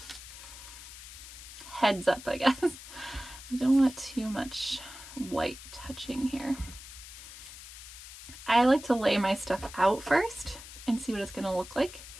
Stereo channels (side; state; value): left; noise; hiss, 14 dB below the sound